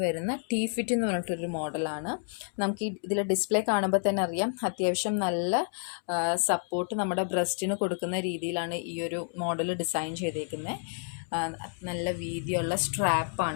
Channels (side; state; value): right; silent; 58 dB below the other